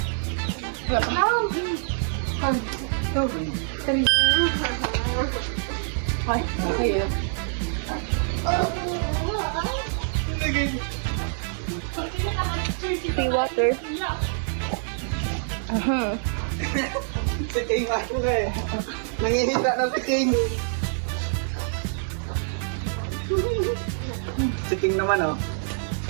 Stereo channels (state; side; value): silent; left; digital silence